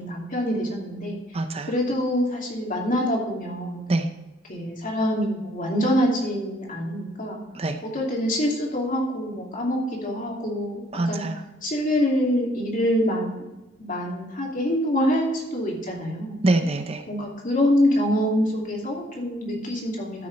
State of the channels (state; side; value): normal; both; correlation 0.65